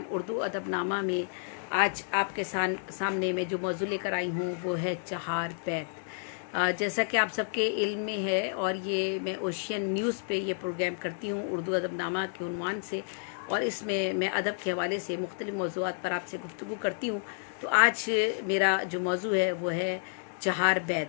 उर्दू अदबनामा में आज आपके सामने में जो मौजू लेकर आई हूँ वो है चहार बैत। जैसा कि आप सबके इल्म में है और ये मैं ओशियन न्यूज़ पे ये प्रोग्राम करती हूँ उर्दू अदबनामा के उन्वान से, और इसमें मैं अदब के हवाले से मुख्तलिफ़ मौज़ूआत पर आपसे गुफ्तगू करती हूँ। तो आज मेरा जो मौजू है वो है चहार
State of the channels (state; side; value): silent; right; digital silence